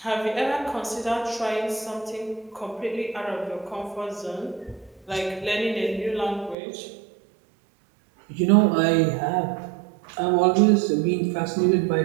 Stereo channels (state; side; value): drops out; left; at 6.6 s